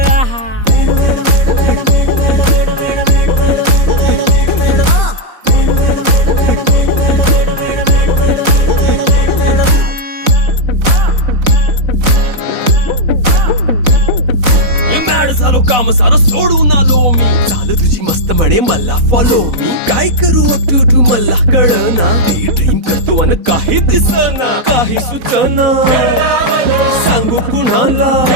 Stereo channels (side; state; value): left; late; 4.0 ms